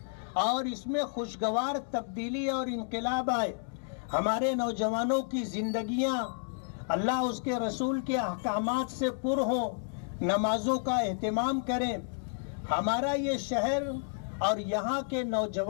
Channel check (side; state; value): right; silent; digital silence